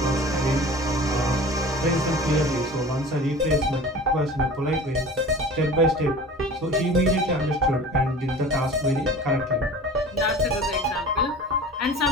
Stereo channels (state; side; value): normal; both; correlation 0.40